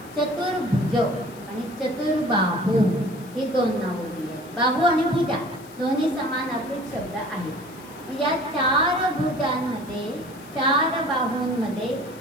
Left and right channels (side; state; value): left; noise; hiss, 23 dB below the sound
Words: चतुर्भुज आणि चतुर्बाहू ही 2 नावं दिली आहेत. बाहू आणि भुजा दोन्ही समानार्थी शब्द आहेत. या 4 भुजांमध्ये, 4 बाहूंमध्ये